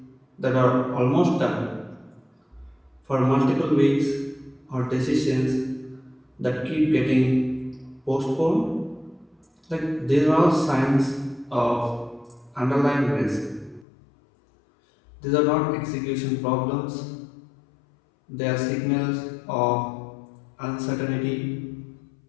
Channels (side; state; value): right; drops out; at 13.9 s